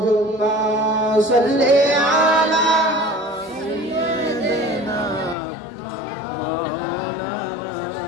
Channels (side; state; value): right; drops out; at 5.4 s